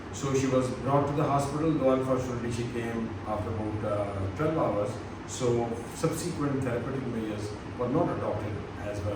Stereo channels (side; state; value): both; identical; correlation 1.00